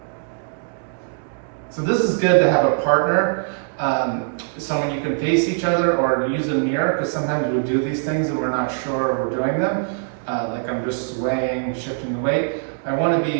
So this is good to have a partner, someone you can face each other or use a mirror, because sometimes we do these things and we're not sure we're doing them. Like I'm just swaying, shifting the weight. I want to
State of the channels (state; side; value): silent; left; digital silence